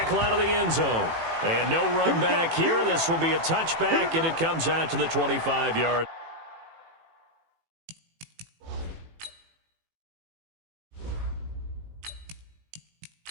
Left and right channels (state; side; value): late; left; 18 ms